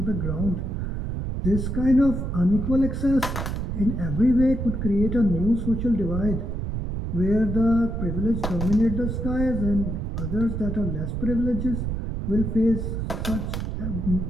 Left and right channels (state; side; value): noise; right; rumble, 3 dB below the sound